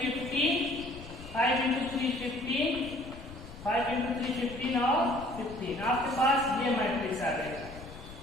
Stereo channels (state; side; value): noise; left; rumble, 16 dB below the sound